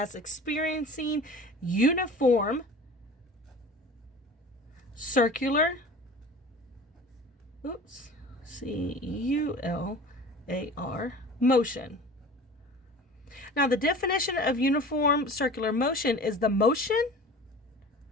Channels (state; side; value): normal; both; correlation 0.40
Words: experiencing uniform circular CULAR motion. Now, the definition of uniform circular motion is the motion